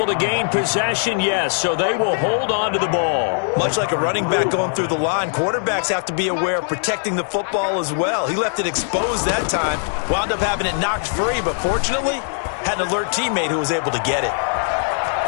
to gain possession, yes. So they will hold on to the ball. Much like a running back going through the line, quarterbacks have to be aware of protecting the football as well. He left it exposed that time. Wound up having it knocked free, but fortunately, had an alert teammate who was able to get it.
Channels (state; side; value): silent; right; digital silence